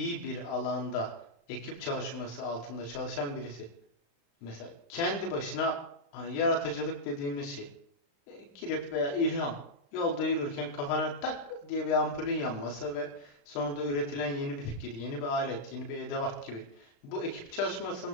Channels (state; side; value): late; right; 35 ms